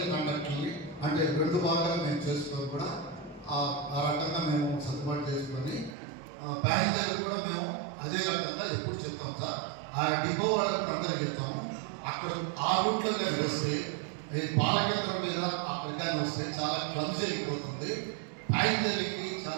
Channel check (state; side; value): drops out; left; at 6.0 s